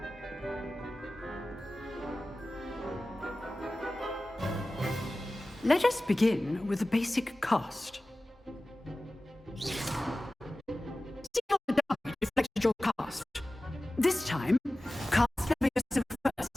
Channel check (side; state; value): both; normal; correlation 0.96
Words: Let us begin with the basic cast. See how the die reflected your cast. This time, cast Levioso